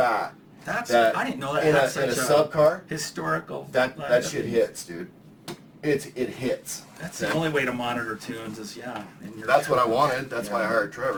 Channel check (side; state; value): both; identical; correlation 1.00